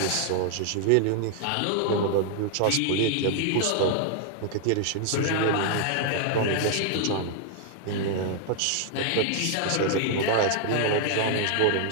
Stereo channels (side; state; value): both; different; correlation 0.00